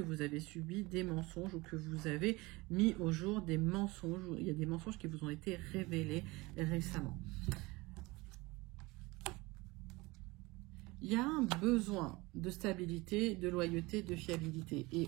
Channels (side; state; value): left; quieter; 22.7 dB